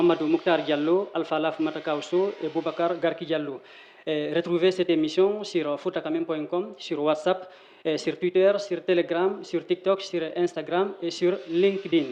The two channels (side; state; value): both; identical; correlation 1.00